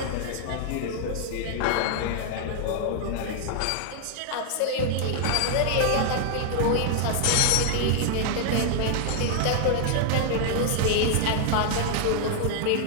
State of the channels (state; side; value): different; both; correlation -0.01